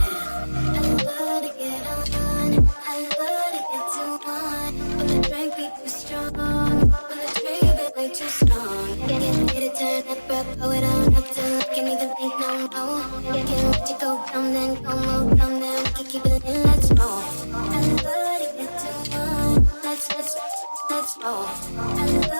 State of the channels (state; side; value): inverted; both; correlation -1.00